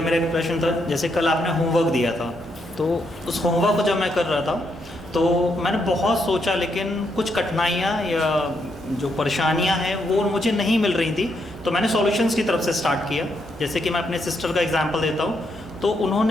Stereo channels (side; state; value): both; normal; correlation 0.78